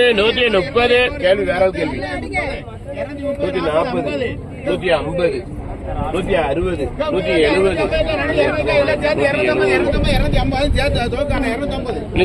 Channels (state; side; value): identical; both; correlation 1.00